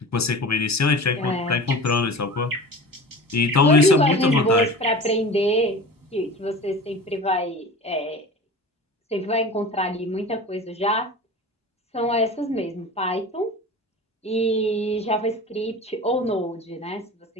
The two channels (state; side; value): normal; both; correlation 0.36